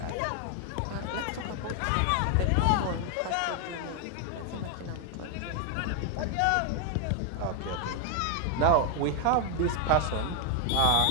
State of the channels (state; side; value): different; both; correlation 0.00